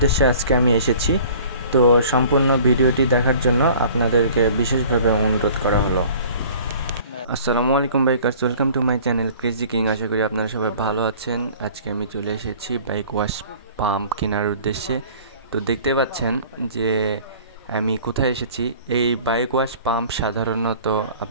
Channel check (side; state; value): both; inverted; correlation -0.48